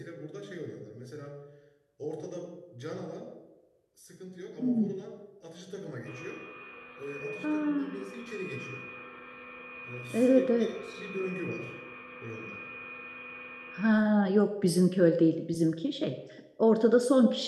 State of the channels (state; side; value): identical; both; correlation 1.00